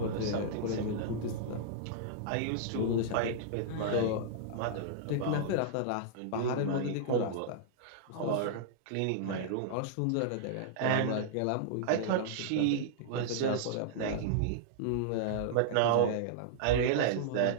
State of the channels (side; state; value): both; different; correlation -0.02